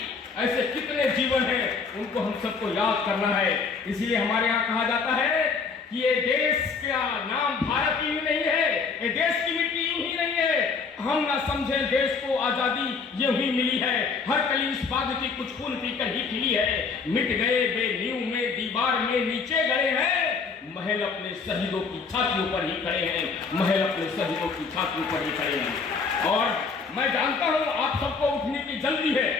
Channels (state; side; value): quieter; right; 5.0 dB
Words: उनको हम सबको याद करना है। इसीलिए हमारे यहाँ कहा जाता है कि ये देश का नाम भारत ही नहीं है, ये देश की मिट्टी यूं ही नहीं है। हम ना समझें देश को आजादी यूं ही मिली है, हर कली इस बात की कुछ खून पीकर ही खिली है। मिट गए बेनींव में दीवार में नीचे गए हैं, महल अपने शहीदों की छातियों पर ही खड़े हैं, महल अपने शहीदों की छातियों पर ही खड़े हैं। और मैं जानता हूं आप सबको उठने की जल्दी है,